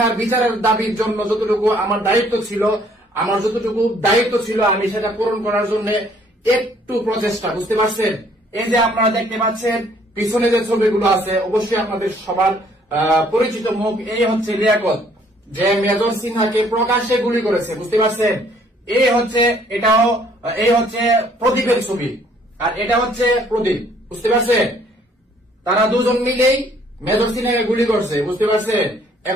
বিচারের দাবির জন্য যতটুকু আমার দায়িত্ব ছিল, আমি সেটা পূরণ করার জন্য একটু প্রচেষ্টা, বুঝতে পারছেন। এই যে আপনারা দেখতে পাচ্ছেন পিছনে যে ছবিগুলো আছে, অবশ্যই আপনাদের সবার পরিচিত মুখ। এই হচ্ছে লিয়াকত, যে মেজর সিনহাকে প্রকাশ্যে গুলি করেছে, বুঝতে পারছেন। এই হচ্ছে প্রদীপের ছবি, আর এটা হচ্ছে প্রদীপ, বুঝতে পারছেন। তারা দুজন মিলেই মেজর সিনহাকে গুলি করছে, বুঝতে পারছেন।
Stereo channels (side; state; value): both; normal; correlation 0.62